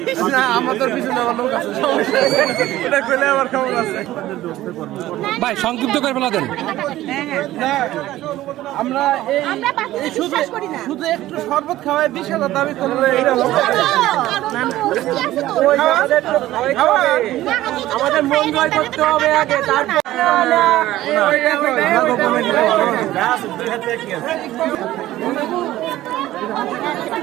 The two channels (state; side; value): quieter; left; 15.2 dB